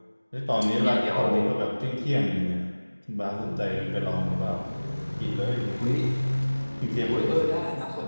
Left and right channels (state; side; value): inverted; both; correlation -1.00